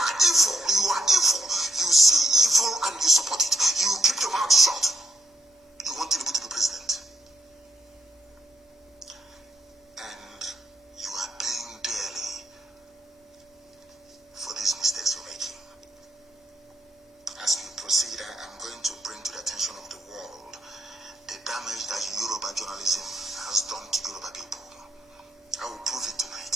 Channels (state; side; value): normal; both; correlation 0.78